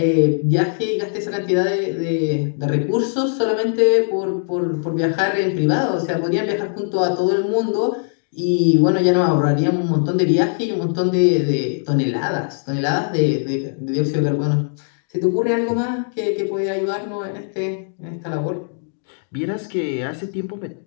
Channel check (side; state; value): right; silent; digital silence